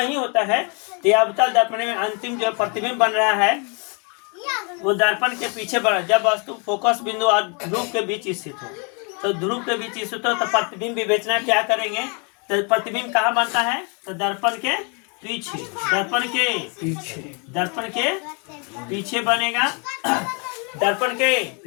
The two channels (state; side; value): quieter; right; 35.3 dB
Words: होता है। तो ये अवतल दर्पण में अंतिम जो प्रतिबिंब बन रहा है वो दर्पण के पीछे बना। जब वस्तु फोकस बिंदु और ध्रुव के बीच स्थित हो, तो ध्रुव के बीच स्थित हो तो प्रतिबिंब विवेचना क्या करेंगे, तो प्रतिबिंब कहाँ बनता है, तो दर्पण के पीछे, दर्पण के पीछे, दर्पण के पीछे बनेगा। दर्पण के